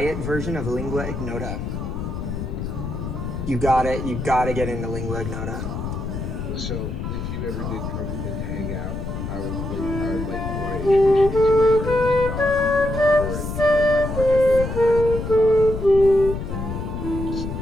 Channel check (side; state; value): left; noise; rumble, 5 dB below the sound